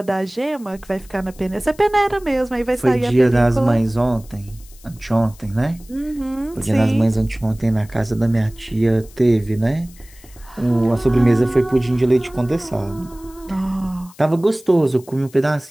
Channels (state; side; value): noise; left; hiss, 24 dB below the sound